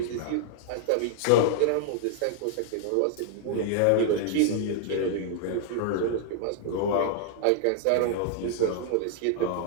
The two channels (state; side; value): different; both; correlation -0.01